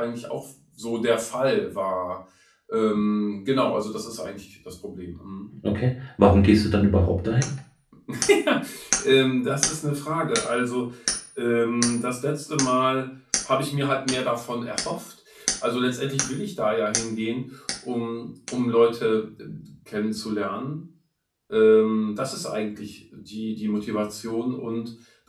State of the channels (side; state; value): both; identical; correlation 1.00